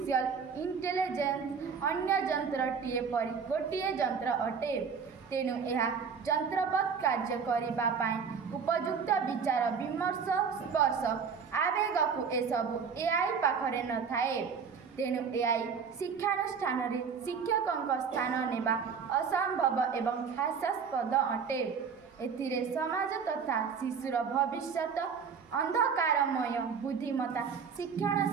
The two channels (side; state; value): left; quieter; 6.1 dB